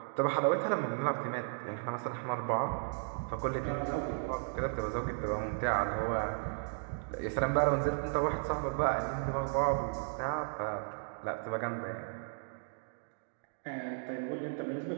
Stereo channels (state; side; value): silent; left; digital silence